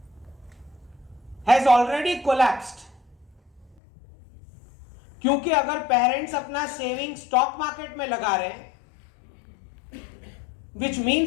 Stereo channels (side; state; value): right; drops out; at 3.8 s